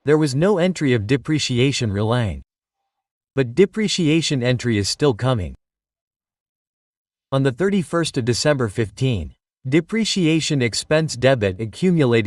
There was no entry of depreciation relying. But depreciation entry is still coming. On the 31st of December 15. Depreciation expense debit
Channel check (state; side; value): identical; both; correlation 1.00